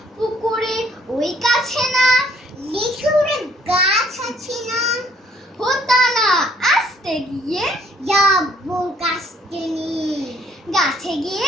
পুকুরে ওই কাছে না লিচুর গাছ আছে না, হোতা না আসতে গিয়ে যাবো কাছতে নিয়ে। গাছে গিয়ে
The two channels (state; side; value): normal; both; correlation 0.63